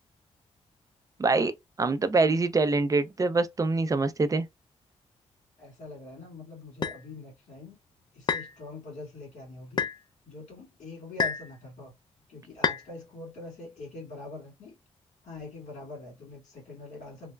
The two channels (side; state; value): both; normal; correlation 0.56